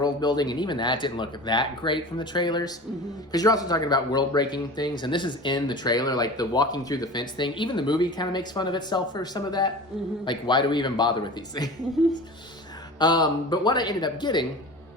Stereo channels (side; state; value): both; normal; correlation 0.36